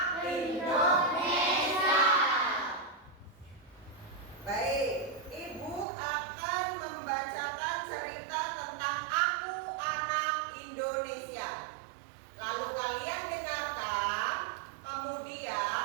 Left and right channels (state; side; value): drops out; left; at 5.9 s